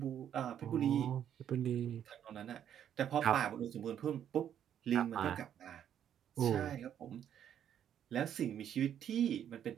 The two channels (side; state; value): left; quieter; 9.7 dB